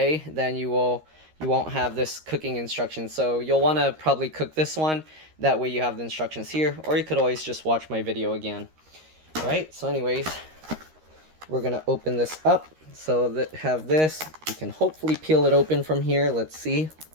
then you won't have this cooking instructions. So you'll want to probably cook this one, that way you have the instructions here, or you could always just watch my video again. Alright, so anyways, we're going to open this up. So that have this, you can hopefully peel it open from here. Let's see.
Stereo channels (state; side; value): late; left; 13 ms